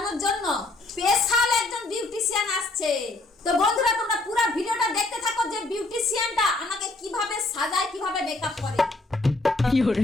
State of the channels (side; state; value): right; quieter; 3.0 dB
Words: জন্য স্পেশাল একজন বিউটিশিয়ান আসছে। তো বন্ধুরা তোমরা পুরো ভিডিওটা দেখতে থাকো যে বিউটিশিয়ানটা আমাকে কিভাবে সাজায়, কিভাবে মেকআপ করে। কি হরে